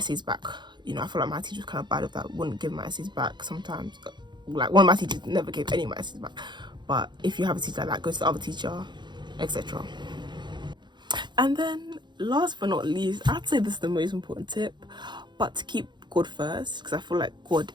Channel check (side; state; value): left; late; 0.22 ms